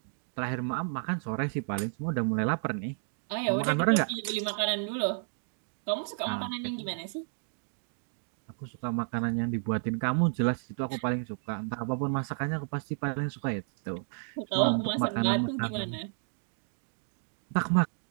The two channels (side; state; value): left; silent; digital silence